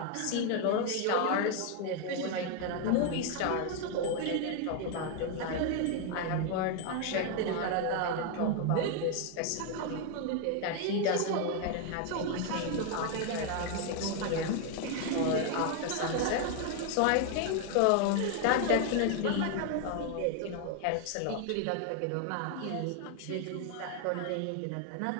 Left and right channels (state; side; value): different; both; correlation 0.01